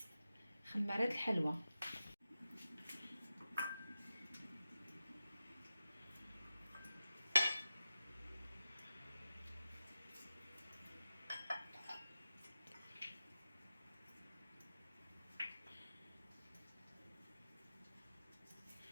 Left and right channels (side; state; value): both; inverted; correlation -0.93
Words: خماره د الحلوى.